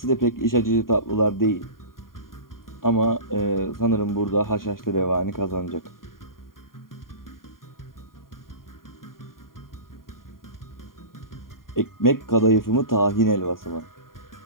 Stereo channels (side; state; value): right; late; 0.91 ms